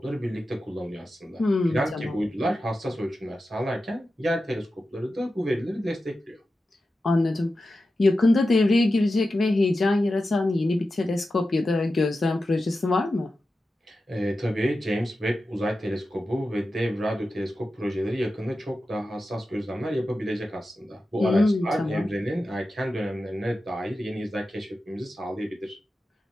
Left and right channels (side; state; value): both; normal; correlation 0.92